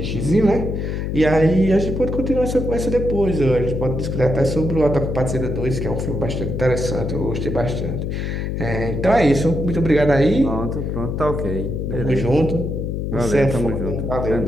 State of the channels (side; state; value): left; noise; hum, 2 dB below the sound